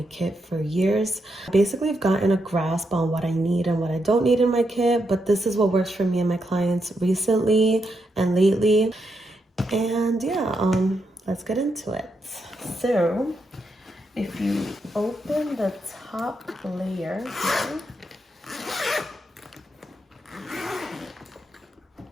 kit for years. Basically, I've gotten a grasp on what I need and what I don't need in my kit, but this is what works for me and my clients recently and lately. And yeah, let's get into it. So, if you open the top layer here,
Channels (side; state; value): both; normal; correlation 0.82